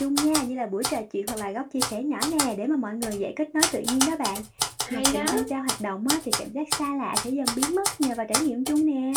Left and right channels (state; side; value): identical; both; correlation 1.00